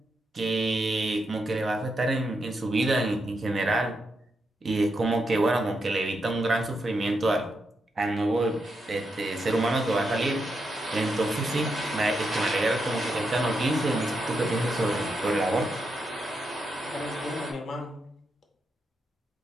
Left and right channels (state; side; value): normal; both; correlation 0.83